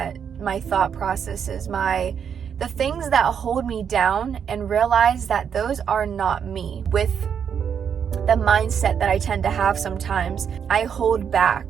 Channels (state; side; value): quieter; left; 7.6 dB